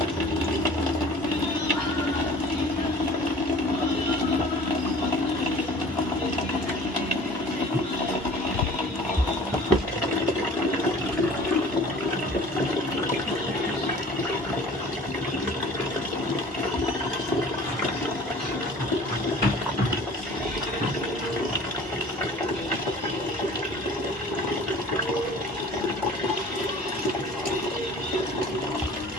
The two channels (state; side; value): normal; both; correlation 0.46